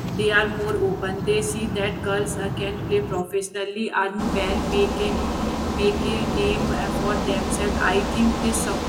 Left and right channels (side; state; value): both; identical; correlation 1.00